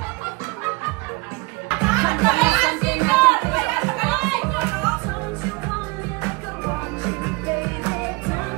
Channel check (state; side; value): quieter; left; 25.4 dB